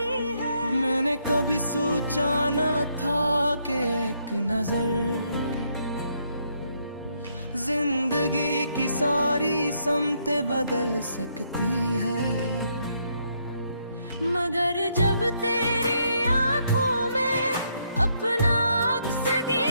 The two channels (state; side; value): inverted; both; correlation -0.74